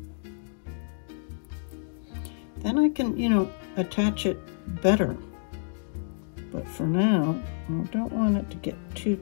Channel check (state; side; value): silent; right; digital silence